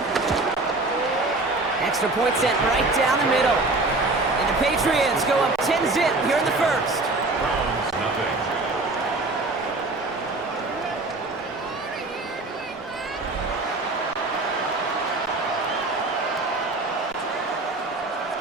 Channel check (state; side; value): quieter; left; 3.1 dB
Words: Extra point sent right down the middle. And the Patriots go up 10-zip here in the first.